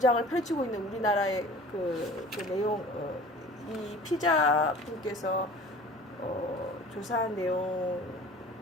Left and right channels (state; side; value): normal; both; correlation 0.44